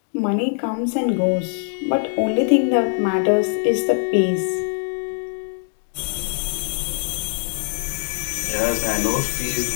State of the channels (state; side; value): silent; right; 61 dB below the other